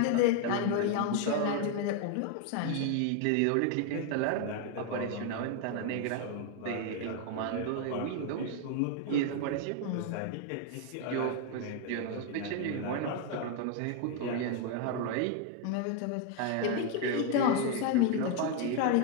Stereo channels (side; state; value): both; different; correlation 0.01